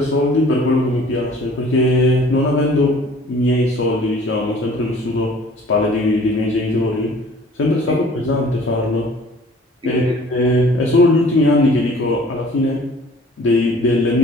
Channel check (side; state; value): both; normal; correlation 0.52